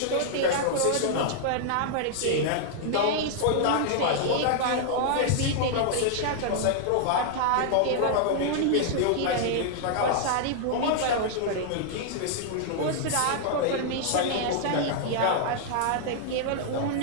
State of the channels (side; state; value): both; different; correlation -0.01